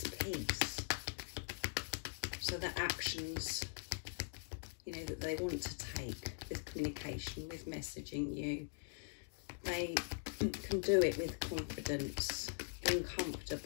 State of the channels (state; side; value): silent; right; digital silence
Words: peace, so that actions, you know, that they want to take with communication, with messaging you, they can do it with confidence, being